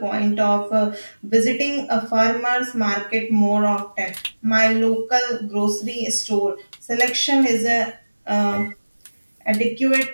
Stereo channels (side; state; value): both; inverted; correlation -1.00